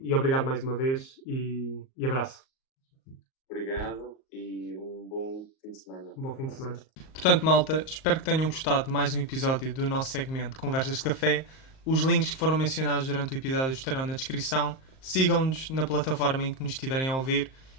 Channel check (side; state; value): right; late; 38 ms